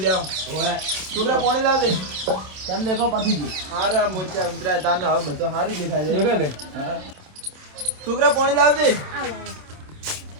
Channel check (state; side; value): late; left; 27 ms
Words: જાવ ઓય છોકરા પાણી લાવ દે કેમ દેખો પાછી ગયું હારા મોચા ઉતરાય તાને હવે બધો સારું દેખાય છે દેખાય લે હા છોકરા પાણી લાવ દે